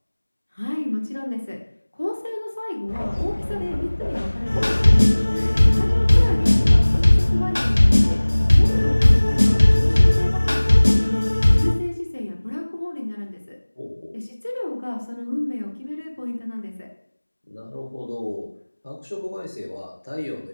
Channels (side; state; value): both; inverted; correlation -1.00